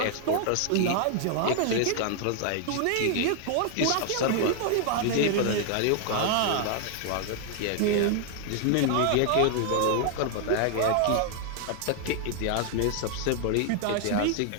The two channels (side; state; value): both; different; correlation 0.00